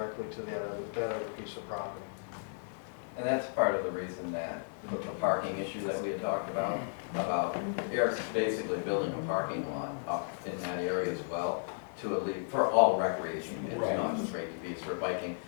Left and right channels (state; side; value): silent; right; digital silence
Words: to the other piece of property. And that's part of the reason that the parking issue that we had talked about Eric's basically building a parking lot up in that area as well to for all recreation, it's not just straight to be for biking.